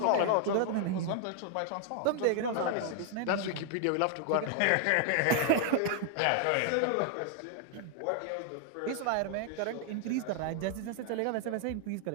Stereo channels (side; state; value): both; different; correlation 0.00